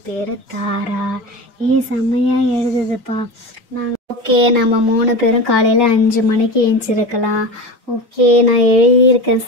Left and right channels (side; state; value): both; normal; correlation 0.27